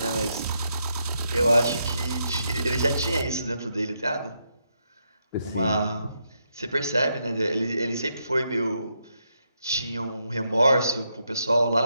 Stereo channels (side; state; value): both; inverted; correlation -0.80